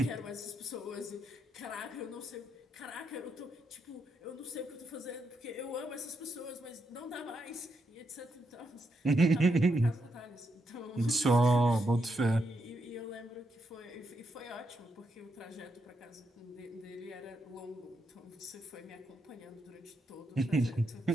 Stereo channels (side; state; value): both; normal; correlation 0.81